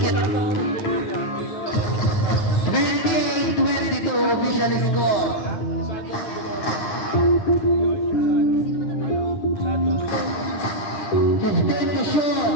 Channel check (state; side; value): late; right; 9.5 ms